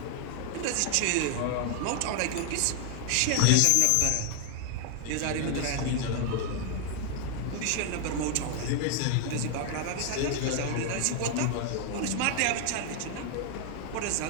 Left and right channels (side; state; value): both; different; correlation 0.00